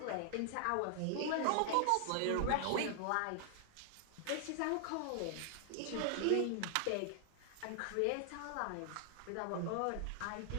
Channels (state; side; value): different; both; correlation 0.00